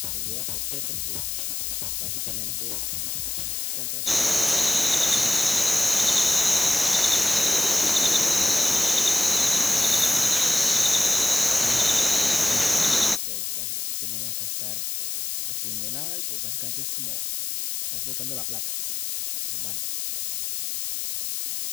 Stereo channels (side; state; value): left; noise; hiss, 3 dB below the sound